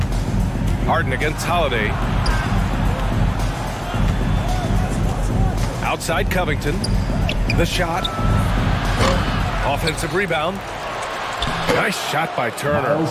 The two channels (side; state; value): both; identical; correlation 1.00